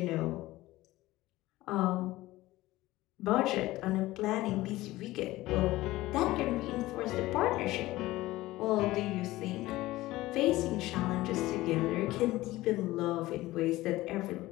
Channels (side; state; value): right; quieter; 17.7 dB